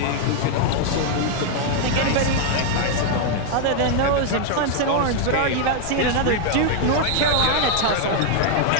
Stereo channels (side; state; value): both; different; correlation 0.00